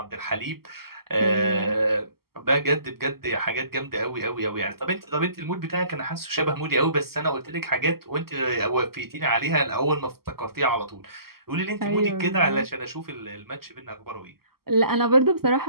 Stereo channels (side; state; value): left; late; 0.94 ms